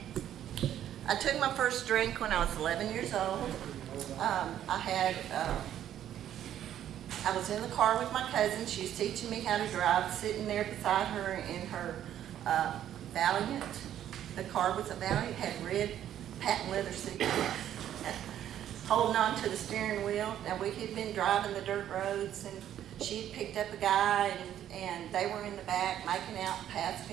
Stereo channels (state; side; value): quieter; left; 11.0 dB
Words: I took my first drink when I was 11 years old. I was in the car with my cousin. She was teaching me how to drive, sitting there beside her in her Valiant. The car was a Valiant, had red patent leather seat, holding on to the steering wheel. Now, we had been driving the dirt roads, and she had picked up a guy, and they were in the back making out,